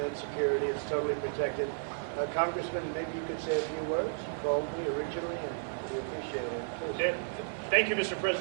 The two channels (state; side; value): silent; left; 56 dB below the other